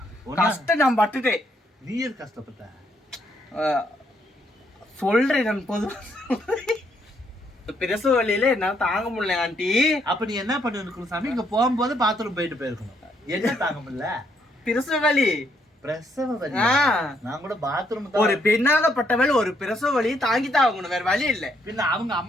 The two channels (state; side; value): normal; both; correlation 0.73